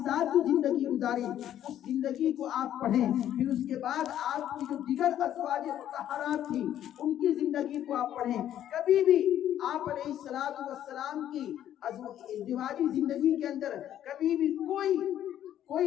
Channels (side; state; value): right; quieter; 11.2 dB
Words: ساتھ جو زندگی گزاری اس زندگی کو آپ پڑھیں، پھر اس کے بعد آپ کی جو دیگر ازواج مطہرات تھی ان کی زندگی کو آپ پڑھیں۔ کبھی بھی آپ علیہ السلام کی ازدواجی زندگی کے اندر کبھی بھی کوئی